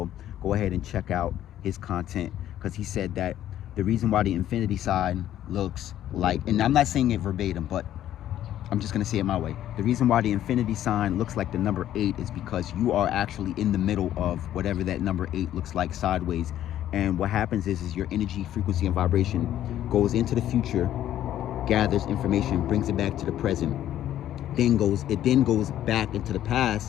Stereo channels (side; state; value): right; quieter; 12.0 dB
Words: Go ahead and check out his content, because he said that the reason why the infinity sign looks like, and I'm not saying it verbatim, but I'm just going to say it my way. The reason why the infinity sign looks like the number 8 is because you are actually in the middle of whatever that number 8 looks like sideways. And what happens is your energy, frequency, and vibration goes into the future, gathers information, brings it back to the present, it then goes back into the